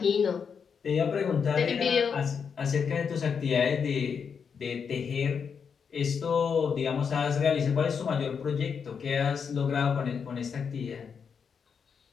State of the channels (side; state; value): right; quieter; 6.4 dB